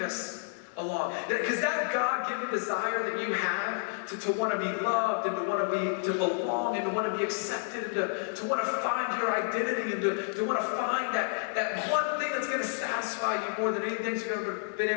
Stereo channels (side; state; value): right; silent; 58 dB below the other